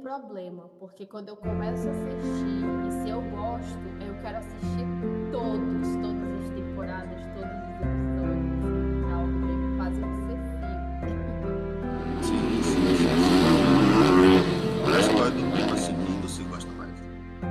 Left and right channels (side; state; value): both; identical; correlation 1.00